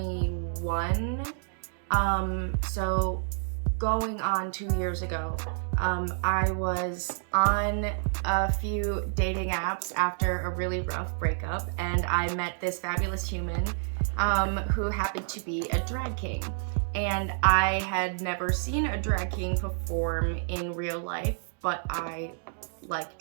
going on 2 years ago. I was on a few dating apps after a really rough breakup, and I met this fabulous human who happened to be a drag king. And I had never seen a drag king perform in real life, but I like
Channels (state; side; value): silent; left; digital silence